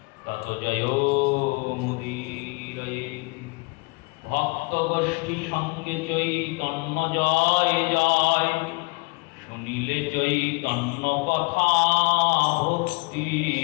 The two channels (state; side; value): quieter; right; 27.7 dB